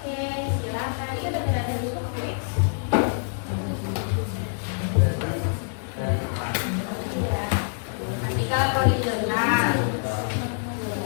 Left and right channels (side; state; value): right; silent; 61 dB below the other